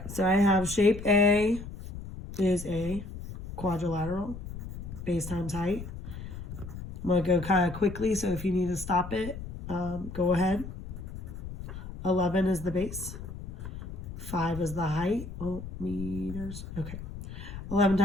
so I have shape A is a quadrilateral, base times height. I'm going to go kind of quickly, so if you need to stop it, go ahead. 11 is the base. 5 is the height. Oh, meters. Okay. 11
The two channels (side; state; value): left; noise; rumble, 10 dB below the sound